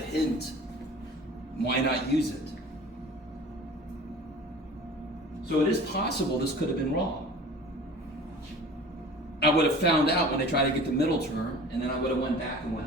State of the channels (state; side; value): normal; both; correlation 0.42